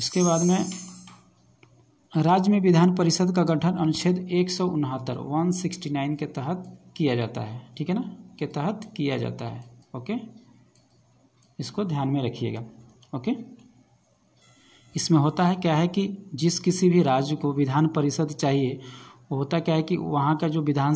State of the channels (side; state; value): both; identical; correlation 1.00